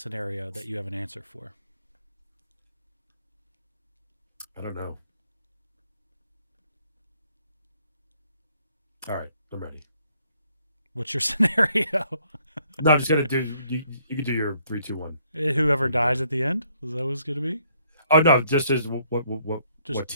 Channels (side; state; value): both; inverted; correlation -0.67